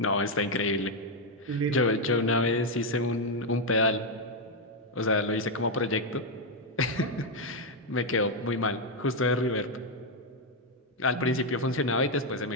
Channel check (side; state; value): both; normal; correlation 0.01